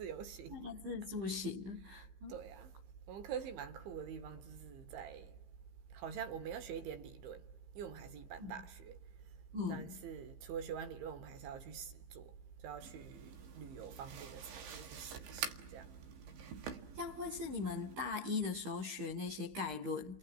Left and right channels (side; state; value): left; late; 15 ms